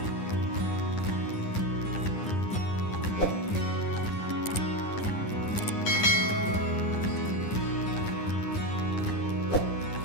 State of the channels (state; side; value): late; right; 10 ms